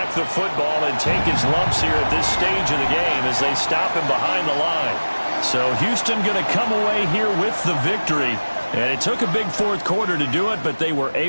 the football and take his lumps here at this stage of the game as they stop him behind the line. So Houston going to come away here with the victory. And it took a big 4th quarter to do it, but they were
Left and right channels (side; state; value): both; inverted; correlation -1.00